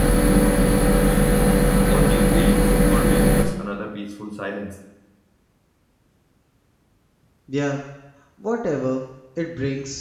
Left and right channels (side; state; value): both; identical; correlation 1.00